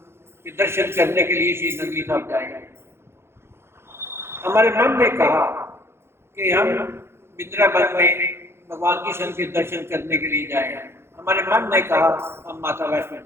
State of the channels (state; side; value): late; left; 0.12 ms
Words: के दर्शन करने के लिए श्री नंगली साहब जाएंगे। हमारे मन ने कहा कि हम वृंदावन में भगवान कृष्ण के दर्शन करने के लिए जाएंगे। हमारे मन ने कहा हम माता वैष्णो